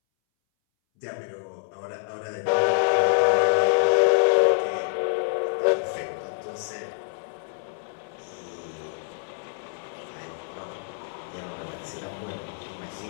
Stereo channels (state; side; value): silent; right; 61 dB below the other